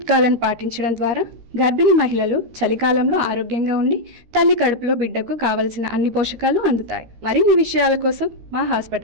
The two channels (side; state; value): left; late; 13 ms